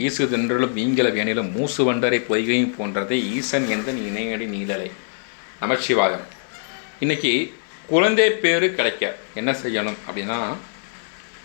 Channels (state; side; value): silent; right; 64 dB below the other